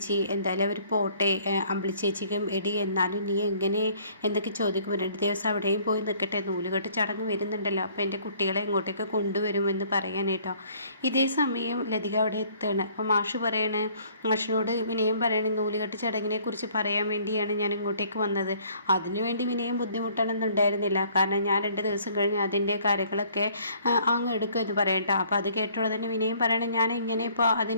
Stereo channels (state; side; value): inverted; both; correlation -0.59